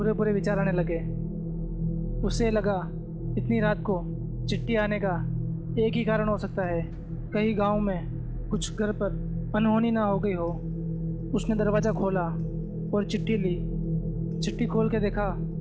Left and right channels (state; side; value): identical; both; correlation 1.00